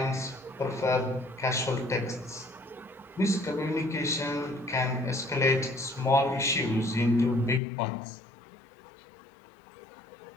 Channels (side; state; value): right; drops out; at 7.6 s